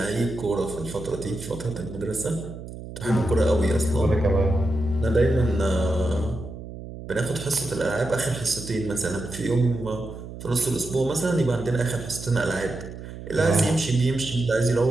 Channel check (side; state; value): right; noise; hum, 12 dB below the sound